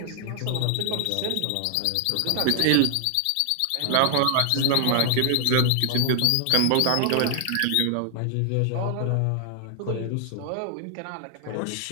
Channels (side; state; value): both; different; correlation 0.00